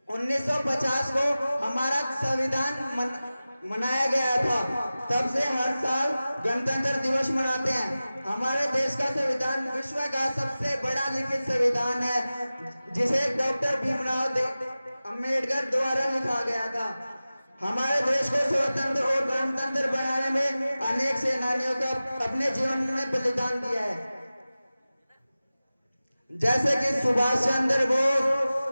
1950 को हमारा संविधान मनाया गया था। तब से हर साल गणतंत्र दिवस मनाते हैं। हमारे देश का संविधान विश्व का सबसे बड़ा लिखित संविधान है, जिसे डॉक्टर भीमराव अंबेडकर द्वारा लिखा गया था। हमारे देश को स्वतंत्र और गणतंत्र बनाने में अनेक सेनानियों का अपने जीवन में बलिदान दिया है, जैसे कि सुभाष चंद्र बोस,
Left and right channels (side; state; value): both; inverted; correlation -0.96